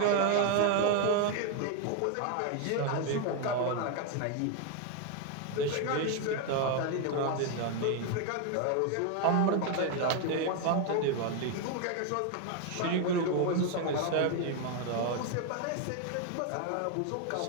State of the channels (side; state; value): both; different; correlation 0.01